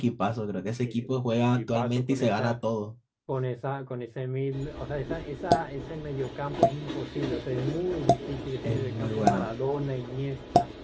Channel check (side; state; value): both; identical; correlation 1.00